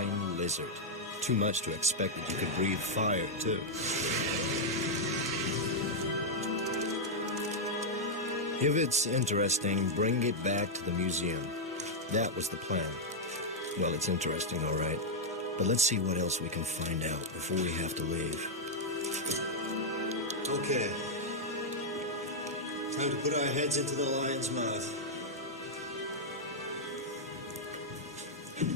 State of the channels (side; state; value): both; normal; correlation -0.03